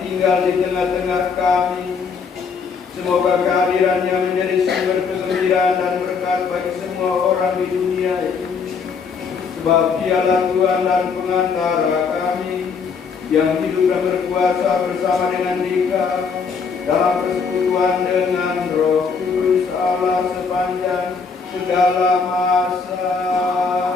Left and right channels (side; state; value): right; quieter; 5.5 dB